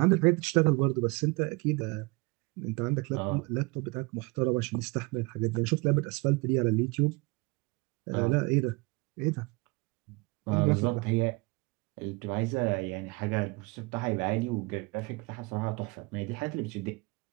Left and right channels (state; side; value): quieter; left; 26.9 dB